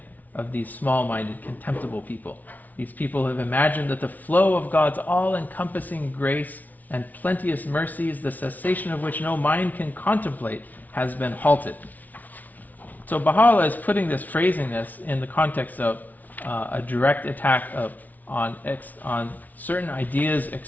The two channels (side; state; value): right; late; 0.077 ms